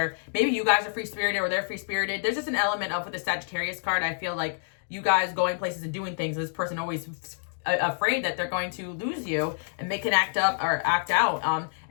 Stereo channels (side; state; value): right; silent; digital silence